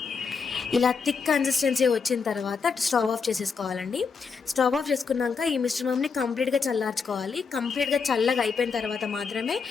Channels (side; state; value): right; quieter; 5.4 dB